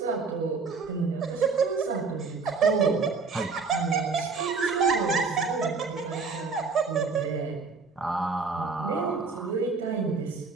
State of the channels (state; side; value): quieter; left; 4.6 dB